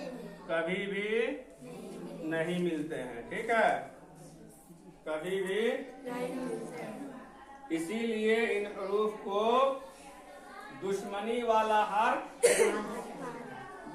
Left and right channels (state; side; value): identical; both; correlation 1.00